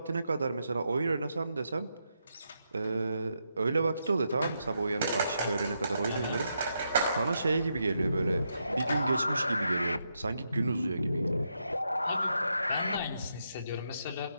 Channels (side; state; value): both; inverted; correlation -0.82